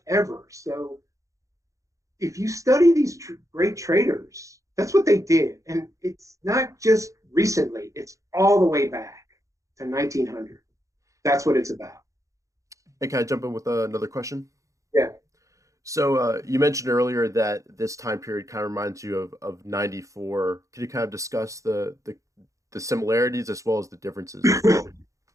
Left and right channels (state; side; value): late; left; 0.15 ms